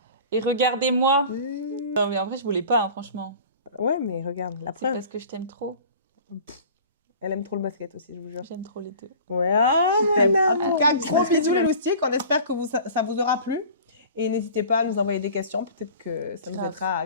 Et regardez-moi. Non, mais en vrai, je voulais pas, hein, franchement. Ouais, mais regarde, la preuve. C'est parce que je t'aime trop. Elle aime trop le basket aussi, je vous jure. J'aime trop les deux. Ouais, en tout cas, gros bisous les loustiques. On espère que ça vous aura plu. Et n'hésitez pas à nous envoyer des questions. Peut-être que ça nous aidera à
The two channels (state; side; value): inverted; both; correlation -0.42